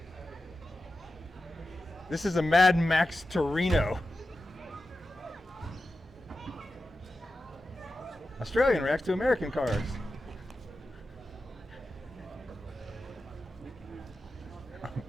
This is a Mad Max Torino. Australian reacts to American cars.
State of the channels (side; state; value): both; normal; correlation 0.92